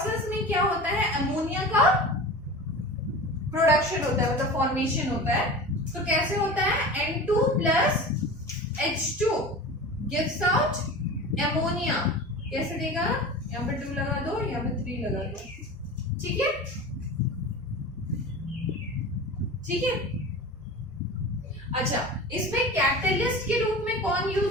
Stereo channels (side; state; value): both; normal; correlation 0.33